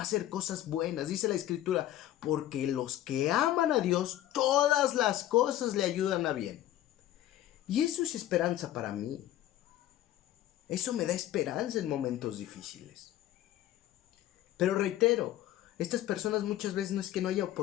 hacer cosas buenas. Dice la Escritura, porque los que aman a Dios, todas las cosas le ayudan a bien. Y eso es esperanza para mí. Eso me da esperanza en momentos difíciles. Pero reitero, estas personas muchas veces no es que no haya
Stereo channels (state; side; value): quieter; right; 13.3 dB